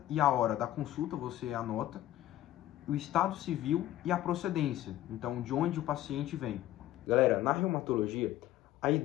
e a hora da consulta você anota, o estado civil e a procedência, então de onde o paciente vem. Galera, na reumatologia, a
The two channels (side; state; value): right; quieter; 13.9 dB